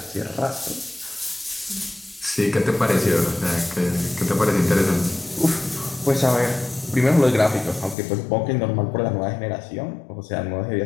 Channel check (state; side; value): drops out; right; at 8.0 s